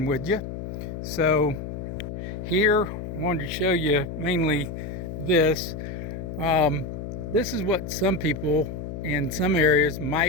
with you. So here, I wanted to show you mainly this. This is what some people in some areas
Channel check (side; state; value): left; noise; hum, 7 dB below the sound